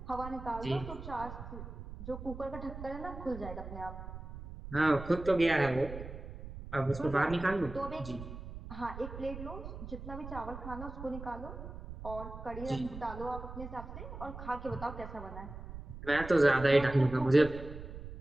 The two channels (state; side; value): noise; right; rumble, 11 dB below the sound